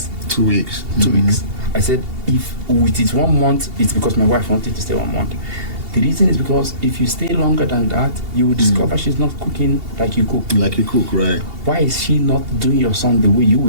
2 weeks. 2 weeks. I said, if it is 1 month, it's because my wife wanted to stay 1 month. The reason is because if you stay longer than that, you will discover she's not cooking like you cook. Like you cook, right? Why is she not doing your son the way you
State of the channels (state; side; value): late; left; 2.8 ms